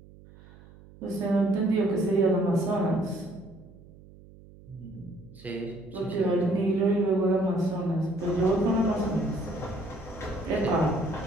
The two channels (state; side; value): noise; right; hum, 22 dB below the sound